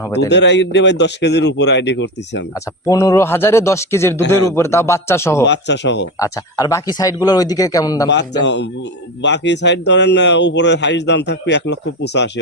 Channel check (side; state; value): both; normal; correlation 0.19